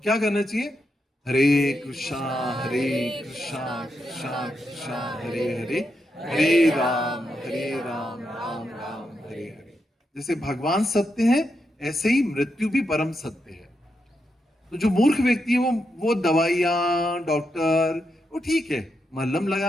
करना चाहिए? हरे कृष्णा हरे कृष्णा कृष्णा कृष्णा हरे हरे, हरे राम राम राम हरे हरे। जैसे भगवान सत्य है, ऐसे ही मृत्यु भी परम सत्य है। तो जो मूर्ख व्यक्ति है वो दवाइयां, डॉक्टर, वो ठीक है, मलहम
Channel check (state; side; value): normal; both; correlation 0.84